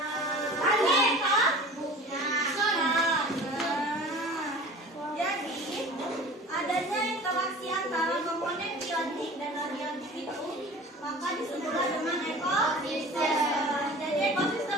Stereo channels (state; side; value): normal; both; correlation 0.41